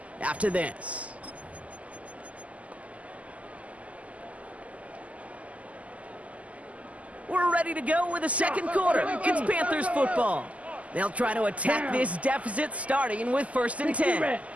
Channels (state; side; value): late; left; 0.069 ms